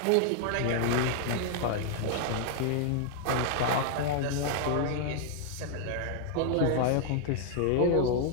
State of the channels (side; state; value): both; different; correlation 0.00